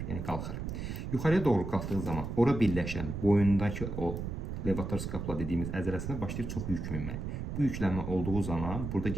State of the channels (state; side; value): noise; right; rumble, 5 dB below the sound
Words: yəni qalxır. Yuxarıya doğru qalxdığı zaman ora birləşən boyundakı o levator skapula dediyimiz əzələsinə başlayır çox yük minmək. Bu yüklənmə olduğu zaman burada